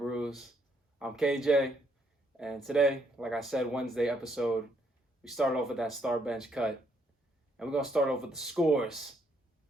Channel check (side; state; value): both; normal; correlation 0.72